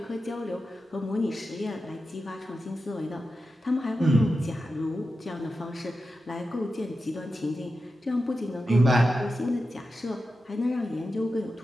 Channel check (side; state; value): both; normal; correlation 0.91